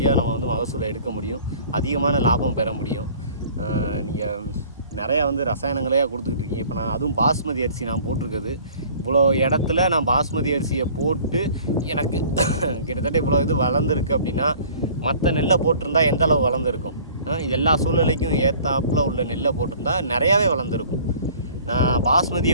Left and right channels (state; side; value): inverted; both; correlation -0.50